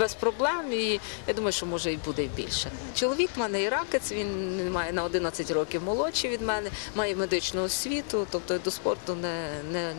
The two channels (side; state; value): right; silent; digital silence